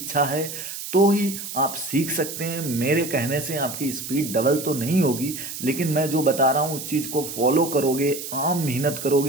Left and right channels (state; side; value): noise; right; hiss, 8 dB below the sound